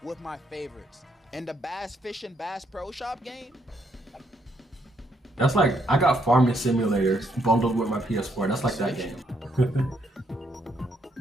with my favorites. And the Bass Fish and Bass Pro Shop game, That's like, I got Farming Simulator bundled with my PS4. That's like that game.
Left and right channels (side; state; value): both; normal; correlation 0.74